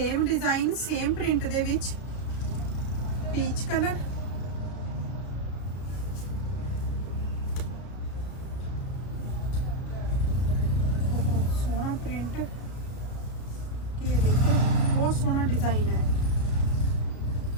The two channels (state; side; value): late; right; 33 ms